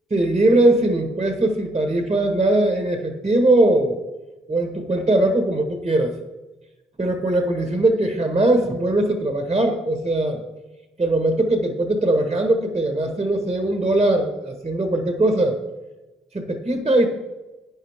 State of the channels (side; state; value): both; normal; correlation 0.71